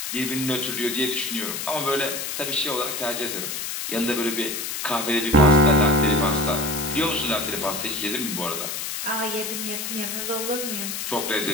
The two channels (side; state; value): left; noise; hiss, 4 dB below the sound